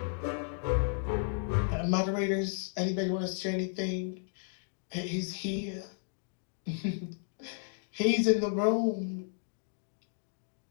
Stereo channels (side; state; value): right; silent; digital silence